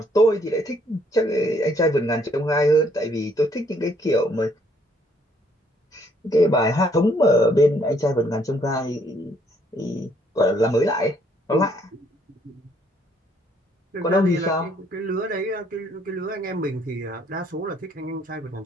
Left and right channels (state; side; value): normal; both; correlation 0.66